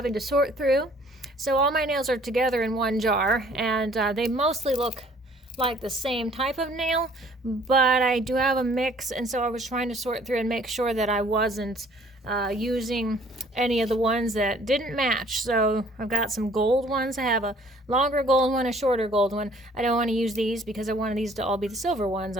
to sort through. So all my nails are together in one jar, and they mostly look like the same type of nail, but I do have a mix, and so I was trying to sort through and make sure that I wasn't using any of the ones that didn't match. So I've got some gold ones. I have a longer gold one, a shorter gold one. I don't want to use these because I wanted these to all be the silver ones.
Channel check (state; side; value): normal; both; correlation 0.57